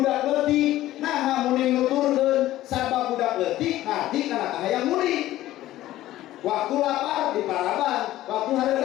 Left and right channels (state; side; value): quieter; right; 14.9 dB